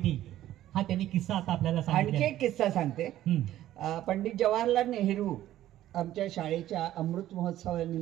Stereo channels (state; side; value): quieter; left; 13.4 dB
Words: हा त्यांनी किस्सा आता आपल्याला सांगितला. आणखी एक किस्सा सांगते. पंडित जवाहरलाल नेहरू आमच्या शाळेच्या अमृत